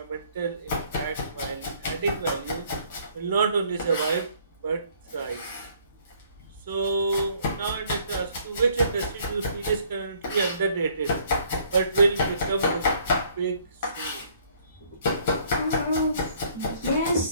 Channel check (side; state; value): both; inverted; correlation -0.62